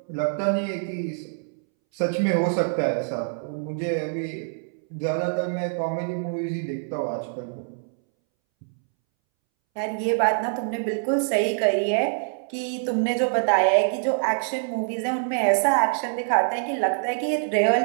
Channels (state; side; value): silent; left; 62 dB below the other